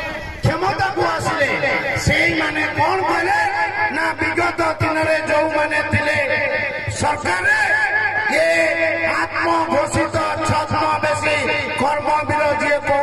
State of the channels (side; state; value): both; identical; correlation 1.00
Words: क्षमता को आसिले से माने कौन कहले ना विगत दिन में जो माने थिले सरकार ये आत्मघोषित छद्मवेशी कर्मवीर जी